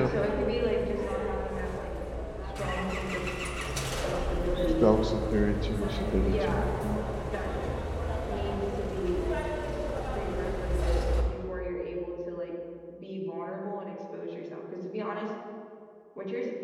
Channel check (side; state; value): both; identical; correlation 1.00